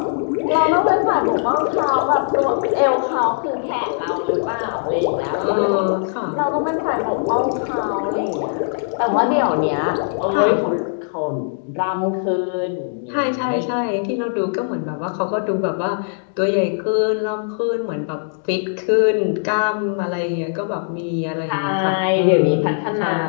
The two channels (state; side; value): silent; right; digital silence